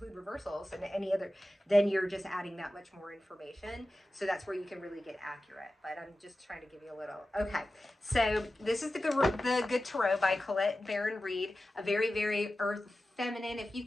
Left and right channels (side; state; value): both; normal; correlation 0.94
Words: reversals and any other, then you're just adding that much more information. So that's where you can really get accurate. But I'm just trying to give you a little. Okay, so this is the Good Tarot by Colette Baron Reed. A very, very earth feminine. If you've